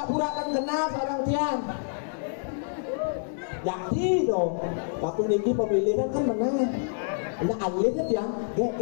kan kenal seorang tiang. Jadi dong, waktu niki pemilihan kan menang. Nah alirnya yang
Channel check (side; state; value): right; silent; digital silence